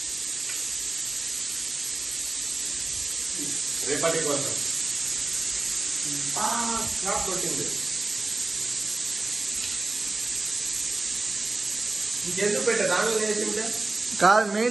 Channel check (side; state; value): left; quieter; 3.3 dB